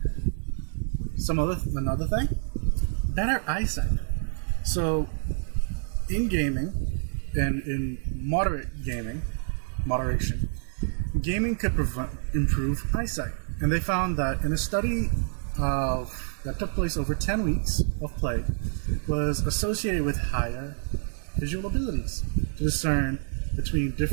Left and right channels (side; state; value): left; silent; digital silence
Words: Another thing, better eyesight. So, in gaming, and in moderation, gaming could improve eyesight. And they found that in a study that took place over 10 weeks of play, was associated with higher visual abilities to discern between